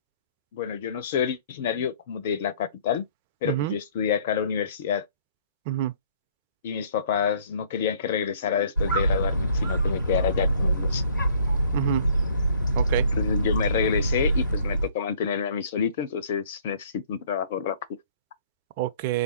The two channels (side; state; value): both; inverted; correlation -0.57